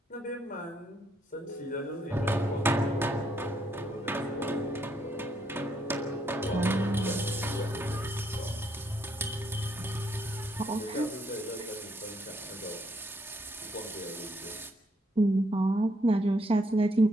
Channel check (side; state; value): both; normal; correlation 0.73